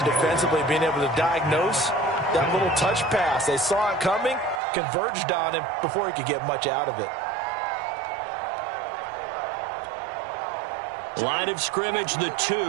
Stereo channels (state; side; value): drops out; left; at 4.6 s